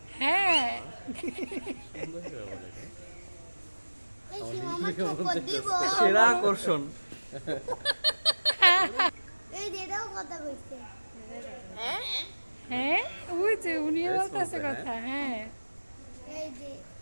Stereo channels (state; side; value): inverted; both; correlation -1.00